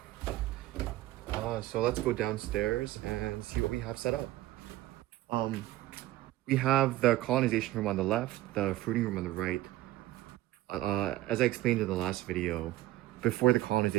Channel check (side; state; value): left; quieter; 16.0 dB